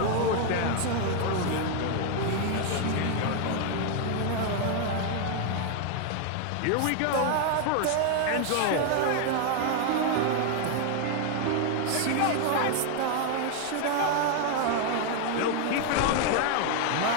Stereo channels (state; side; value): different; both; correlation 0.00